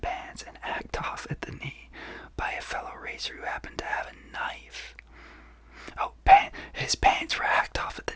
pants and hacked off at the knee by a fellow racer who happened to have a knife. Oh, his pants were hacked off at the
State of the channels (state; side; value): identical; both; correlation 1.00